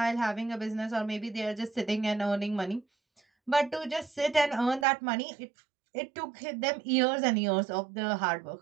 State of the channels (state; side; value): drops out; left; at 4.9 s